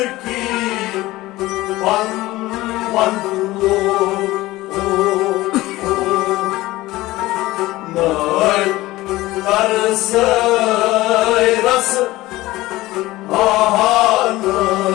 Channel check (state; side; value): quieter; right; 18.2 dB